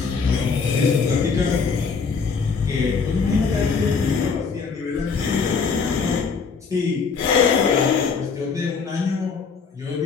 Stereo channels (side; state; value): right; quieter; 5.3 dB